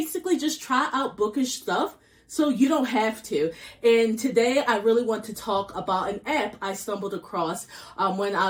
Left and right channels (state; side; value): identical; both; correlation 1.00